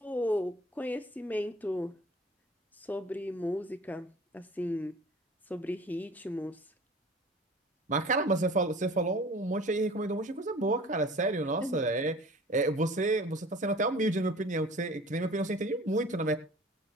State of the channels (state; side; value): normal; both; correlation 0.45